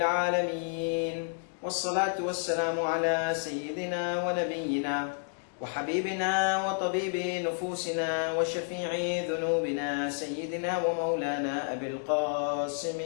والصلاة والسلام على سيدنا ونبينا وحبيبنا وطبيب نفوسنا وشفيع ذنوبنا سيدنا ومولانا أبي القاسم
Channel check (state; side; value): silent; right; digital silence